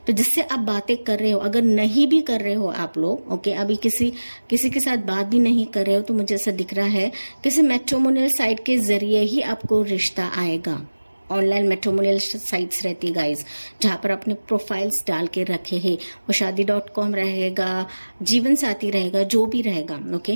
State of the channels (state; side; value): inverted; both; correlation -1.00